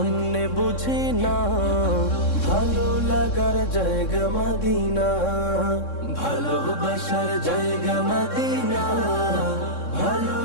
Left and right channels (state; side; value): late; right; 3.6 ms